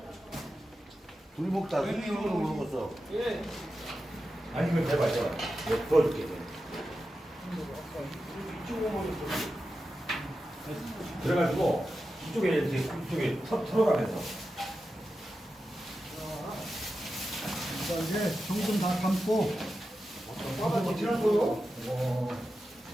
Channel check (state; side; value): normal; both; correlation 0.91